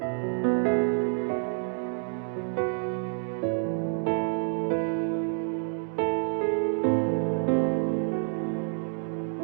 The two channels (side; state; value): left; silent; 59 dB below the other